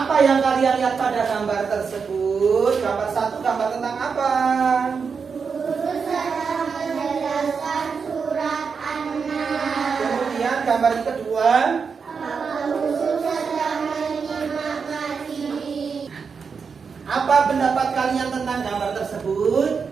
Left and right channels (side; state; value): left; quieter; 5.7 dB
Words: yang kalian lihat pada gambar tersebut? Gambar 1 gambar tentang apa? Guru sedang menjelaskan surat An-Nas. Kemudian gambar yang kedua, Guru sedang menyimak materi. apa pendapat kalian tentang gambar tersebut?